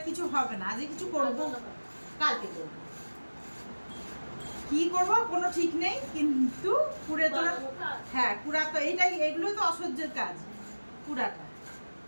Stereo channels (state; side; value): inverted; both; correlation -1.00